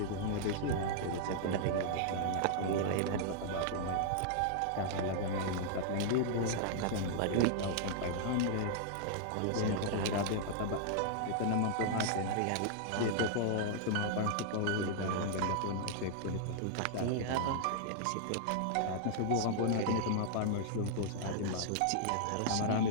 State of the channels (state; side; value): different; both; correlation -0.01